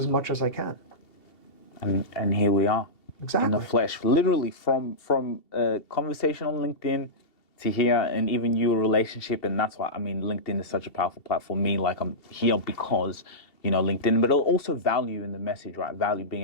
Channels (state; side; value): late; right; 2.7 ms